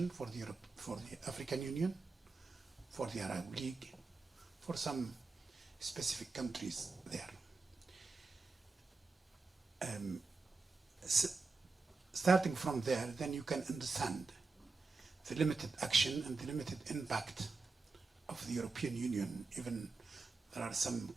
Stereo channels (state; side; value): quieter; left; 4.0 dB